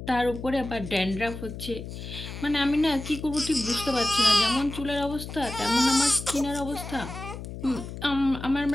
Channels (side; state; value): left; noise; hum, 10 dB below the sound